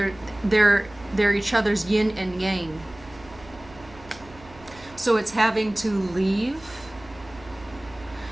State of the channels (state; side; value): noise; right; hum, 21 dB below the sound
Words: they're each other's yin and yang. So it's having to leave